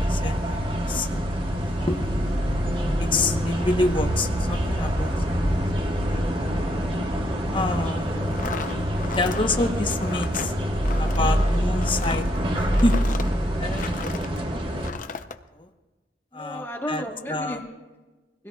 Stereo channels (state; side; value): normal; both; correlation 0.74